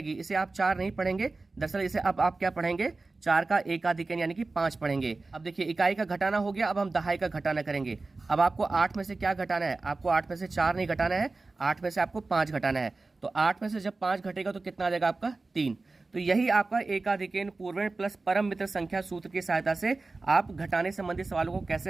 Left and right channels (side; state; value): left; quieter; 3.5 dB